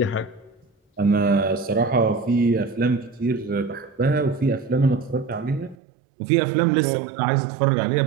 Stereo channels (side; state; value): left; drops out; at 5.8 s